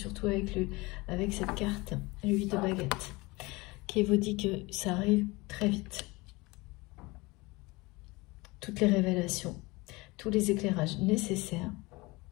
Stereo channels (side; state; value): right; quieter; 23.3 dB